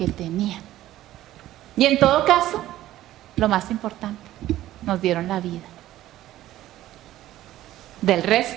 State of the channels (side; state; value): left; quieter; 14.3 dB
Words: tenían. Y en todo caso, lo más importante, nos dieron la vida. Del